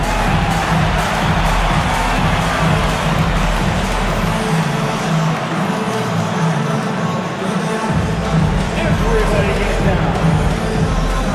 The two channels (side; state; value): both; identical; correlation 1.00